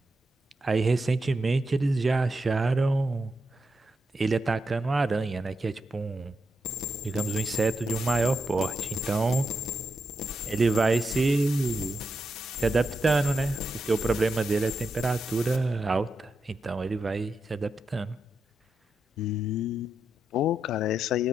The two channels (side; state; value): both; normal; correlation 0.85